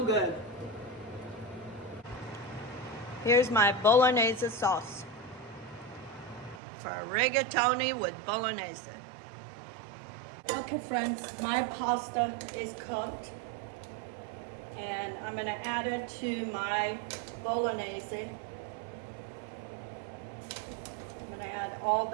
good. Here's my bolognese sauce for rigatoni with bolognese. Okay friends, my pasta is cooked. And I'm gonna add it to my bolognese. I'm gonna add all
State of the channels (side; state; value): left; drops out; at 6.6 s